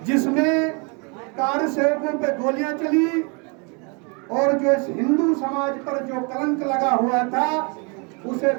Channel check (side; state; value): left; quieter; 33.5 dB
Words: जिसमें कार सेवकों पे गोलियां चली और जो इस हिंदू समाज पर जो कलंक लगा हुआ था उसे